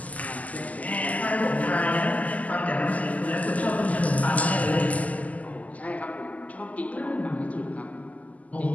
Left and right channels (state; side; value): late; right; 0.074 ms